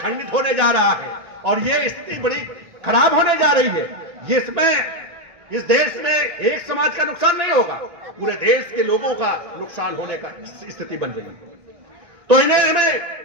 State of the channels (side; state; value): left; late; 1.6 ms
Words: होने जा रहा है और ये स्थिति बड़ी खराब होने जा रही है, जिसमें इस देश में एक समाज का नुकसान नहीं होगा, पूरे देश के लोगों का नुकसान होने का स्थिति बन रही है। तो इन्हें हमें